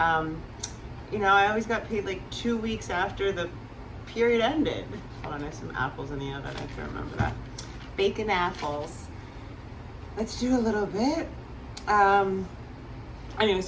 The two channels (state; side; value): identical; both; correlation 1.00